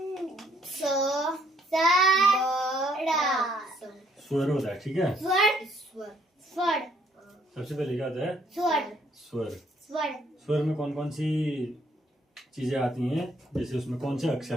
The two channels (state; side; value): normal; both; correlation 0.67